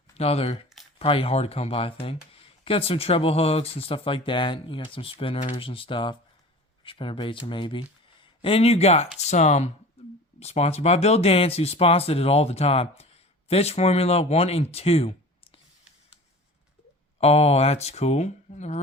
Another probably hard to come by thing. Got some treble hooks and stuff like that. You got some spinners and stuff. Spinner baits or maybe. And you got some sponsored by Bill Dance, who sponsored it all the time. Fish Formula 1 and 2. Oh, that's cool. I never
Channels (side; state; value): both; normal; correlation 0.39